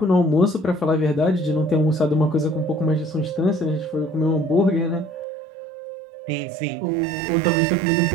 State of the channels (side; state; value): left; drops out; at 5.2 s